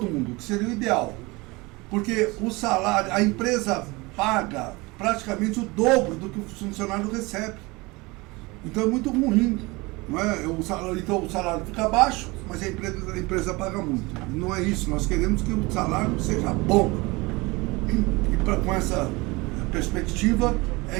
mundo, que seria o ideal. Porque o salário, a empresa paga praticamente o dobro do que o funcionário recebe. Então é muito ruim. Não é? Então o salário fica baixo, mas a empresa paga muito. Não é isso, nós queremos que o salário seja bom. E com essa perspectiva,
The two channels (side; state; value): left; quieter; 24.0 dB